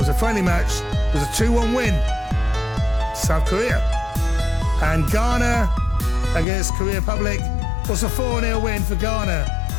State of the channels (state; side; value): drops out; right; at 6.5 s